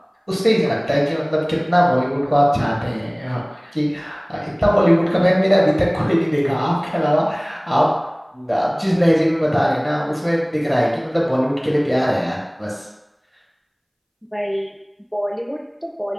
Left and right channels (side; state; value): both; identical; correlation 1.00